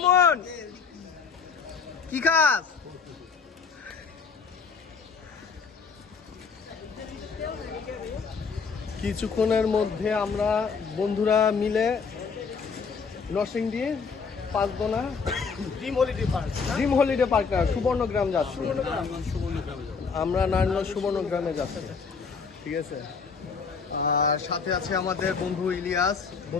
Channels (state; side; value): quieter; right; 5.5 dB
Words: কি খাস? কিছুক্ষণের মধ্যে আমরা বন্ধুরা মিলে Narsingdi Panchdona dream holiday park না সুবর্ণগ্রাম যাচ্ছি। আমরা নারায়ণগঞ্জ সুবর্ণগ্রামে যাচ্ছি, ঠিক আছে। আর সাথে আছে আমাদের বন্ধু ইলিয়াস,